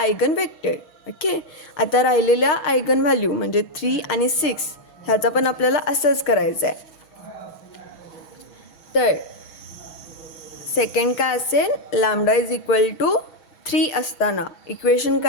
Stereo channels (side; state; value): right; late; 6.3 ms